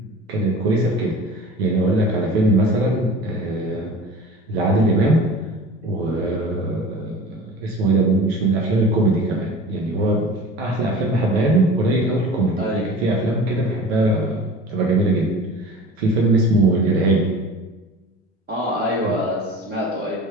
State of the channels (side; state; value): both; normal; correlation 0.39